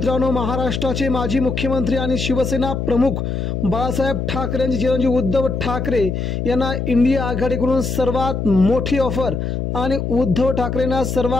महाराष्ट्राचे माजी मुख्यमंत्री आणि शिवसेना प्रमुख बाळासाहेब ठाकरे यांचे चिरंजीव उद्धव ठाकरे यांना इंडिया आघाडीकडून सर्वात मोठी ऑफर आणि उद्धव ठाकरेंना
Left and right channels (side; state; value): left; noise; hum, 2 dB below the sound